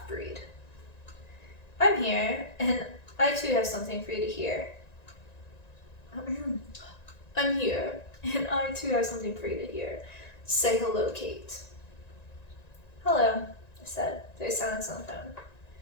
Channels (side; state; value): right; late; 1.9 ms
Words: "I'm here, and I too have something for you to hear." "I'm here, and I too have something for you to hear. Say hello, Kate." "Hello," I said. There's silence on the phone.